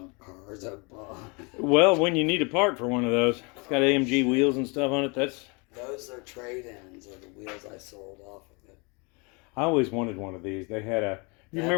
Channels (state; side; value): quieter; right; 30.5 dB